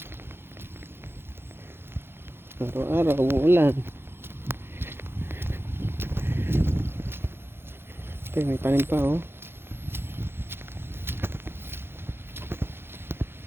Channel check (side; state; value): left; late; 0.11 ms